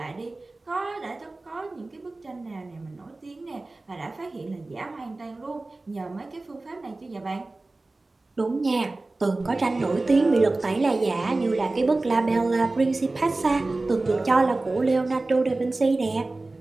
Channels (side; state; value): left; quieter; 3.1 dB